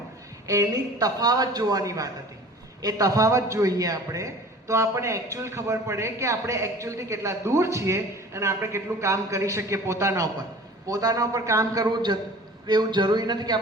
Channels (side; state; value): both; normal; correlation 0.44